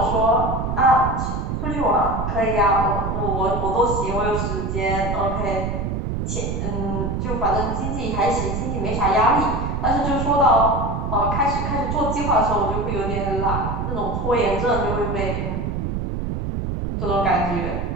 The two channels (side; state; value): right; noise; rumble, 2 dB below the sound